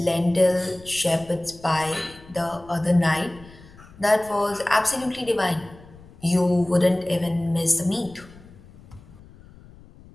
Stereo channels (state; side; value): noise; left; rumble, 22 dB below the sound